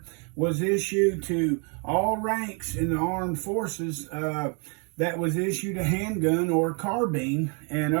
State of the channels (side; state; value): left; quieter; 36.1 dB